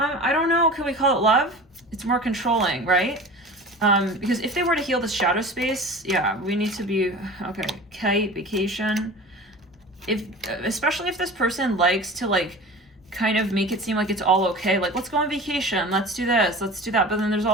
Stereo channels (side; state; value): both; normal; correlation 0.37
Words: don't know, can we call it love? It's more controlling, right? Because if they were to heal the shadow space, yeah, we need to be, okay, kite, vacation. Especially if this person likes to like, kind of make it seem like it's all okay. Like, let's go on vacation. Let's do this. Let's do that. But then there's